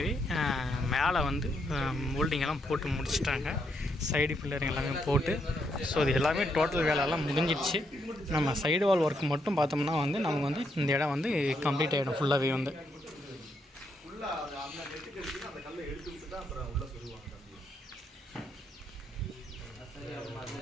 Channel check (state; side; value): normal; both; correlation 0.77